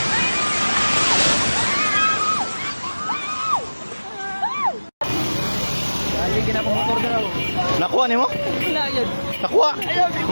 Dali ginapamotor daw. Nakuha ni mo? Wala yun. Nakuha.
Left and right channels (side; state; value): both; inverted; correlation -1.00